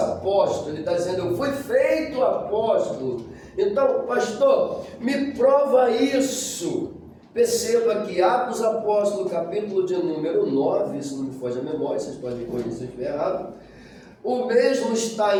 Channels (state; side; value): identical; both; correlation 1.00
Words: Ele está dizendo: eu fui feito apóstolo. Então, pastor, me prova isso. Perceba que Atos Apóstolo, capítulo de número 9, isso não me foge a memória, vocês podem me corrigir se eu estiver errado, o mesmo está